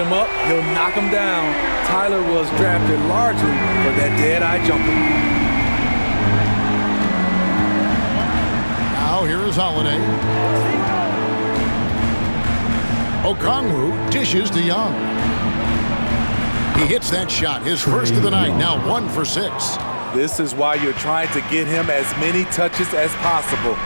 up, he'll knock him down. Tyler was drafted largely for that dead-eye jumper. Now here is Holiday. Okongwu dishes to Young. He hits that shot, his first of the night, now 1 for 6. This is why you're trying to get him as many touches as possible.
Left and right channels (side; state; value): both; inverted; correlation -1.00